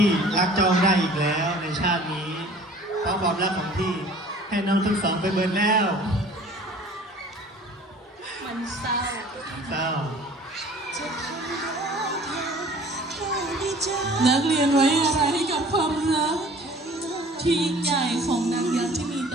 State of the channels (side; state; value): both; normal; correlation 0.49